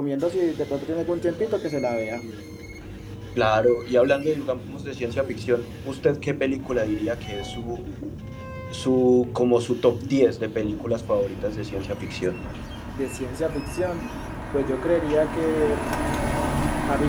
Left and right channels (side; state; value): both; identical; correlation 1.00